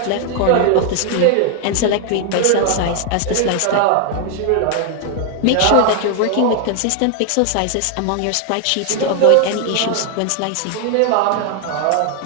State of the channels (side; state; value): both; different; correlation 0.00